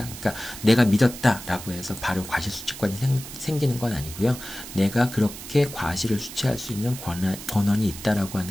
그러니까 내가 믿었다라고 해서 바로 과실 수취권이 생기는 건 아니고요. 내가 그렇게 과실을 수취할 수 있는 권한이 있다라고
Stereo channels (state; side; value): noise; right; hiss, 12 dB below the sound